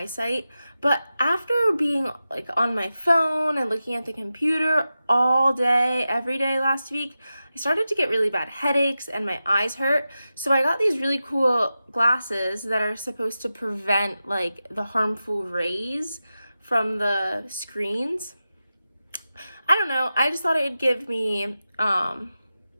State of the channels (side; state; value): both; inverted; correlation -0.92